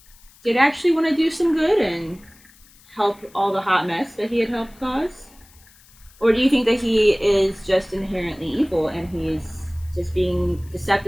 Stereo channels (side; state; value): left; noise; hiss, 27 dB below the sound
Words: did actually want to do some good and help all the hot mess that he had helped cause? Or do you think that he is just inherently evil and he's just being